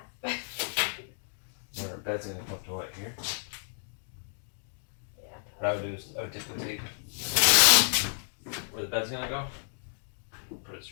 Where our bed's gonna come up to what, here? Yeah. What I would do is I would take the tape where the bed's gonna go, put it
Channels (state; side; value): silent; right; digital silence